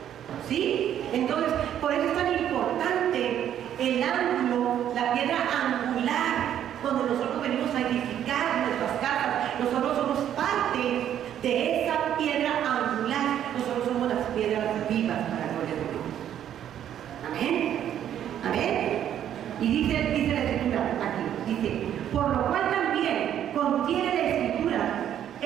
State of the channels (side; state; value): left; quieter; 10.4 dB